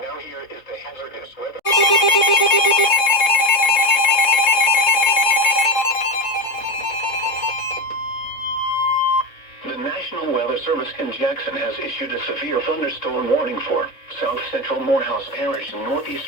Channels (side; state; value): right; late; 3.6 ms